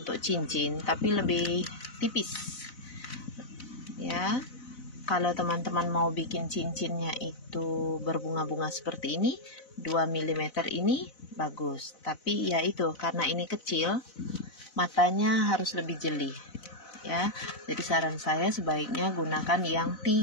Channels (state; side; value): late; right; 4.0 ms